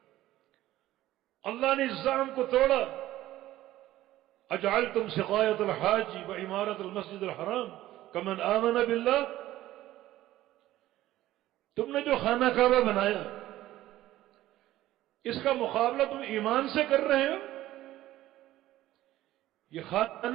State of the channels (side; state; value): left; quieter; 14.9 dB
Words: اللہ نے اس زعم کو توڑا۔ اجعلتم سقایۃ الحاج وعمارۃ المسجد الحرام کمن آمن باللہ، تم نے جو خانہ کعبہ بنایا اس کا مقابلہ تم ایمان سے کر رہے ہو؟ یہ